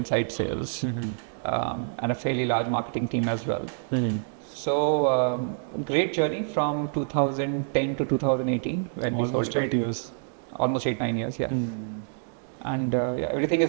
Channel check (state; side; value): silent; left; digital silence